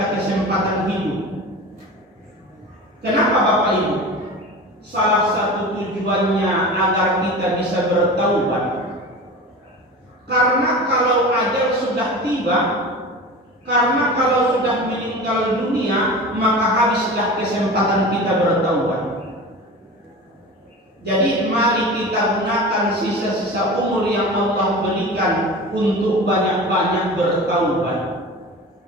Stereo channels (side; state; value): both; normal; correlation 0.33